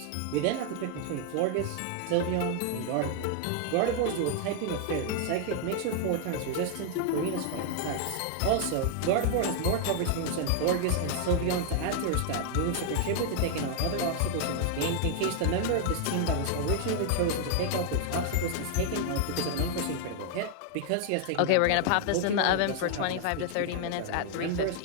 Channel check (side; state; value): both; different; correlation 0.00